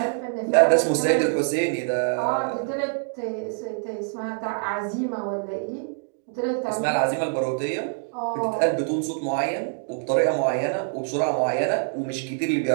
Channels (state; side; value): silent; left; digital silence